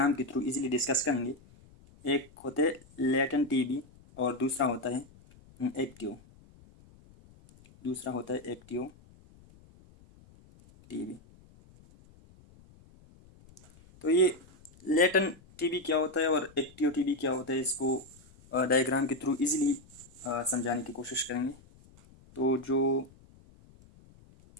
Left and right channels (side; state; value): left; noise; rumble, 25 dB below the sound